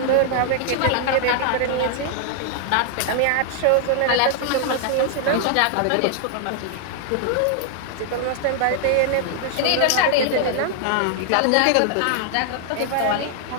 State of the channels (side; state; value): both; different; correlation -0.01